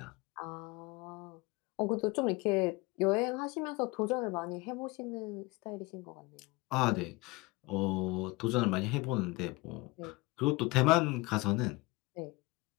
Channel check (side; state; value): right; quieter; 23.4 dB